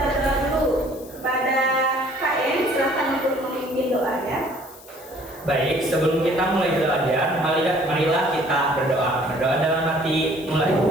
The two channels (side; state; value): left; noise; hiss, 22 dB below the sound